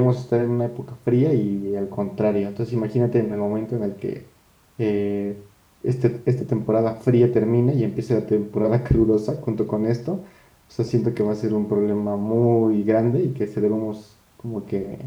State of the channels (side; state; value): both; identical; correlation 1.00